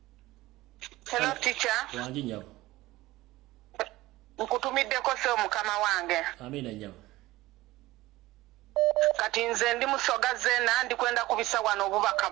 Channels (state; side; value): quieter; left; 18.0 dB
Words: Hello teacher. Wangi nyabo. Nkutumiddeko se Mukama wange. Amina nyabo. Kati nze ndi Musoga zena ndi kwenda kubisa wano obubaka